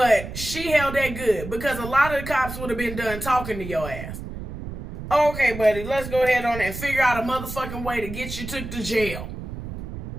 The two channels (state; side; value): noise; right; rumble, 9 dB below the sound